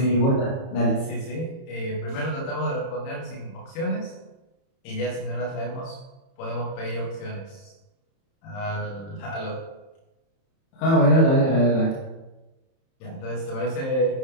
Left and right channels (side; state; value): right; late; 31 ms